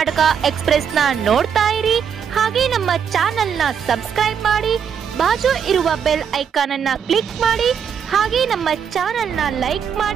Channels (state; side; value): quieter; left; 7.5 dB